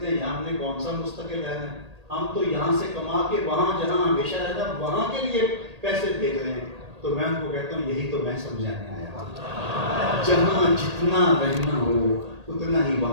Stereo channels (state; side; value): late; left; 1.8 ms